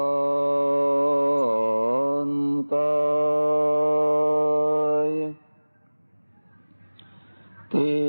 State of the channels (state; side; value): inverted; both; correlation -1.00